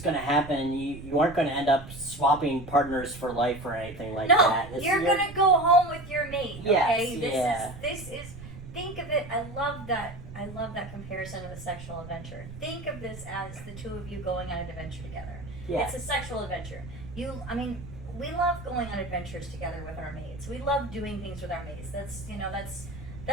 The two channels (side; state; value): right; noise; rumble, 13 dB below the sound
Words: going to happen. You aren't going to end up swapping partners for life or anything like that. No, you're going to go home with your mate, okay? Yes, This is, think of it, I love that comparison of a sexual adventure. Think of this as the two of you going on an adventure together. Yeah. It's a sexual adventure. We love going on adventures together with our mates. We love doing things with our mates.